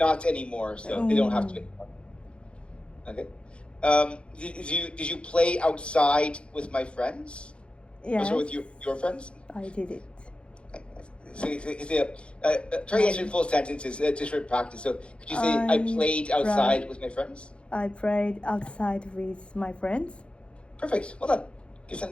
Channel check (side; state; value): right; late; 0.058 ms